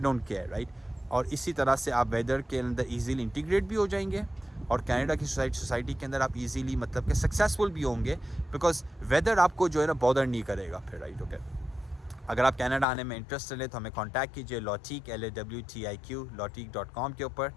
डोंट केयर, राइट। और इसी तरह से आप वेदर के अंदर इजीली इंटीग्रेट भी हो जाएंगे और कनाडा की सोसाइटी के अंदर आप इजीली मतलब कि सक्सेसफुल भी होंगे, बिकॉज वेदर आपको जो है ना बॉदर नहीं करेगा फिर, राइट। ओके, अगर आप कनाडा आने में इंटरेस्टेड है तो हमें कांटेक्ट कीजिए lawteq LAWTIQ lawteq.com के ऊपर,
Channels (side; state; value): right; drops out; at 12.9 s